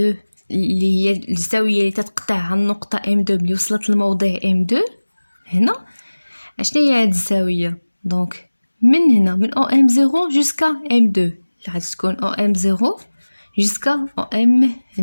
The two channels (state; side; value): inverted; both; correlation -1.00